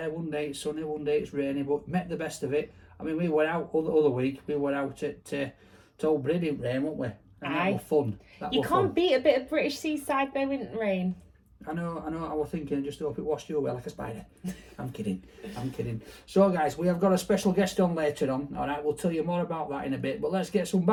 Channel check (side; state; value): both; identical; correlation 1.00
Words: One day it's sunny, one day it's rainy, but met the best of it. I mean, we were out other week, we were out at Old Brady in rain, weren't we? And that was fun. You can't beat a bit of British seaside though, in rain. I know, I was thinking, just hope it washed you away like a spider. I'm kidding. So guys, we have got a special guest on later on, alright, we'll tell you more about that in a bit, but let's get some